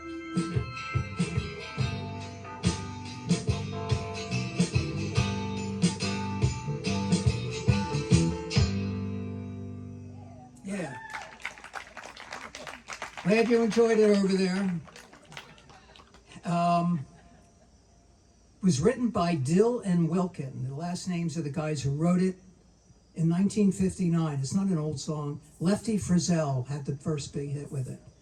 Yeah. Glad you enjoyed it over there. Was written by Dill and Wilkin. The last names of the guys who wrote it in 1959. It's not an old song. Lefty Frizzell had the first big hit with it.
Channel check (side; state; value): both; identical; correlation 1.00